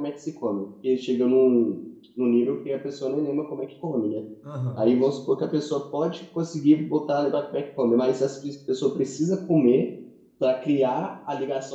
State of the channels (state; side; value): identical; both; correlation 1.00